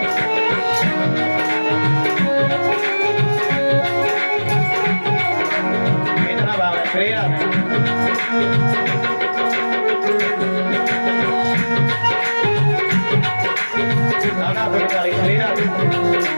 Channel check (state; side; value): inverted; both; correlation -1.00